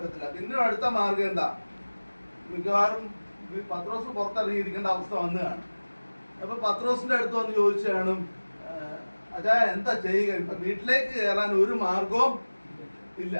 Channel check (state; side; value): inverted; both; correlation -1.00